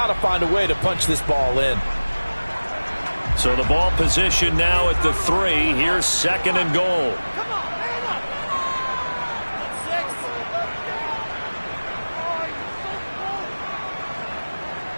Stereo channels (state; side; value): inverted; both; correlation -1.00